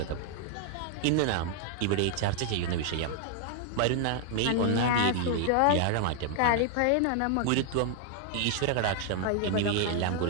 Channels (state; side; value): different; both; correlation 0.00